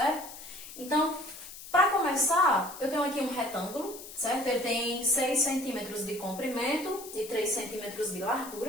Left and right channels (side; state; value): left; noise; hiss, 14 dB below the sound